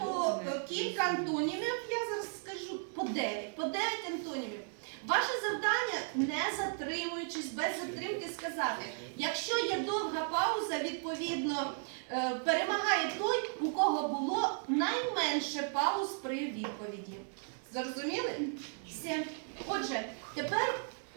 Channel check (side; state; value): left; silent; 54 dB below the other